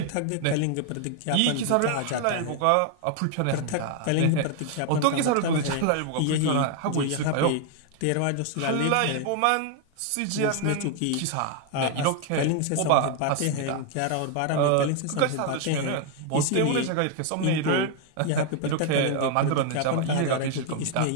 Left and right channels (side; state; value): both; different; correlation 0.00